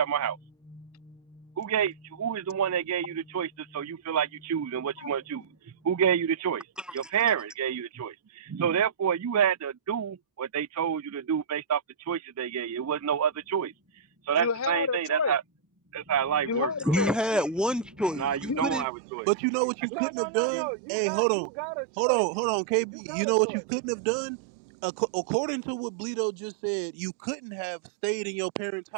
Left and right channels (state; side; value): drops out; left; at 18.9 s